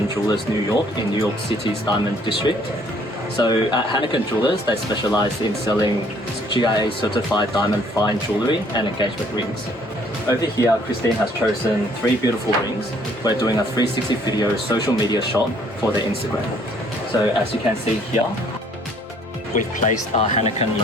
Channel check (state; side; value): normal; both; correlation 0.61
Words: Jewelers, New York, in New York City's Diamond District. So at Haniken Jewelers, they specialize in selling GIA certified diamond fine jewelry and engagement rings. Over here, Christine has chosen 3 beautiful rings. We're doing a 360 video social media shot for their Instagram. So as you can see here, we've placed our Haniken